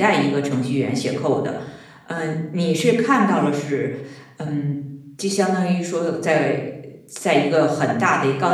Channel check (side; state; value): both; identical; correlation 1.00